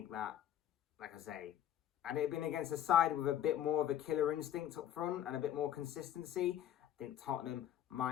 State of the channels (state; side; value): quieter; right; 11.0 dB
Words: that, like I say, had it been against a side with a bit more of a killer instinct up front and a bit more consistency, I think Tottenham